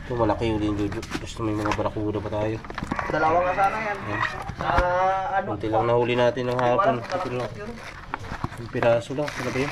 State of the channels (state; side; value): identical; both; correlation 1.00